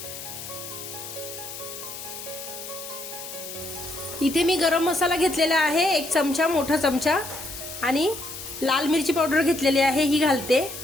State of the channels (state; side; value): noise; left; hiss, 10 dB below the sound